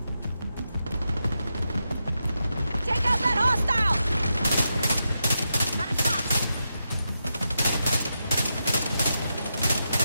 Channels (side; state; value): both; inverted; correlation -0.86